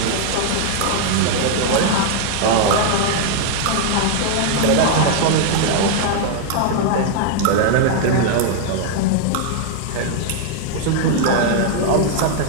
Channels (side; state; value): both; different; correlation 0.00